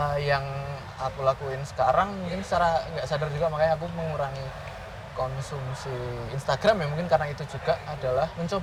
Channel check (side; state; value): both; identical; correlation 1.00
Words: yang aku lakuin sekarang mungkin secara nggak sadar juga, makanya aku mengurangi konsumsi Instagram ya, mungkin karena itu juga adalah